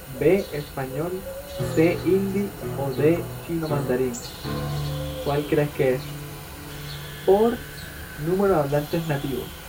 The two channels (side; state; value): both; identical; correlation 1.00